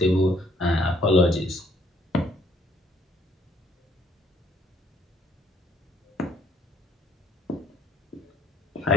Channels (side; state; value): both; normal; correlation 0.65